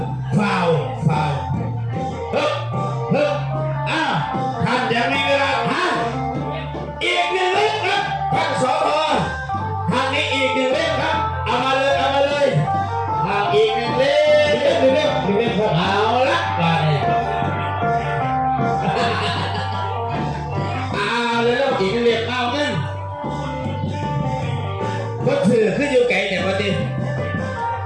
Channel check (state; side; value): identical; both; correlation 1.00